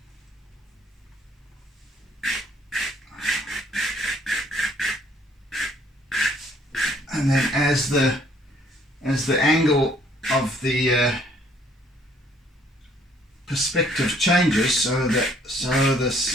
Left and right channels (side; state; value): both; normal; correlation 0.62